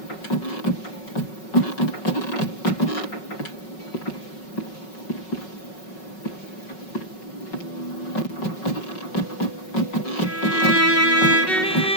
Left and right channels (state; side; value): late; right; 5.4 ms